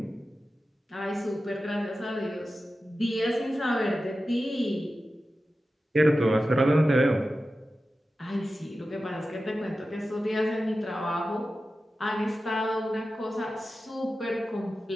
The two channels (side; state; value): both; normal; correlation 0.93